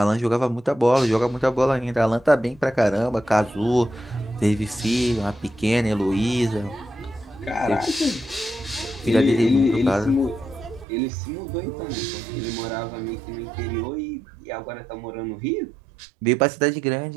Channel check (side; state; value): left; drops out; at 10.9 s